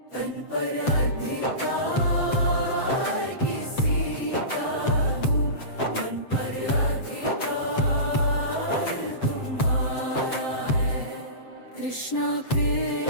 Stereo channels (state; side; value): late; right; 7.7 ms